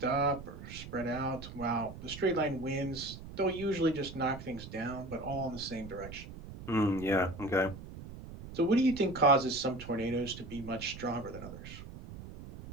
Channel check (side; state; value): right; noise; rumble, 13 dB below the sound